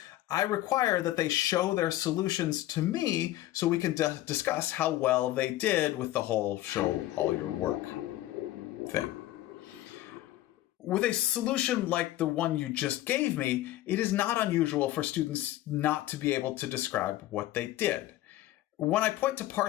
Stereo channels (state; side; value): quieter; right; 15.2 dB